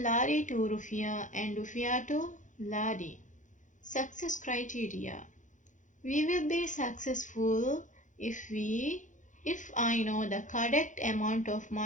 lari to rufiya and rufiya to lari. Success criteria. We will be successful if I know the correct amount of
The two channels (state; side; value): late; right; 0.36 ms